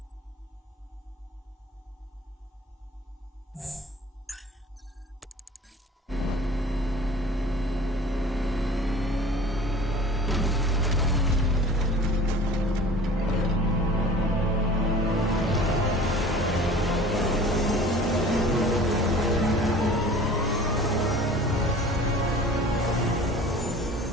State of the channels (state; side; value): normal; both; correlation 0.44